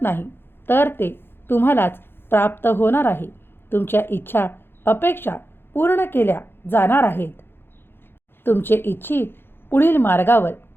नाही, तर ते तुम्हालाच प्राप्त होणार आहे. तुमच्या इच्छा, अपेक्षा पूर्ण केल्या जाणार आहेत. तुमचे इच्छित पुढील मार्गावर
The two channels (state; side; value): late; right; 0.10 ms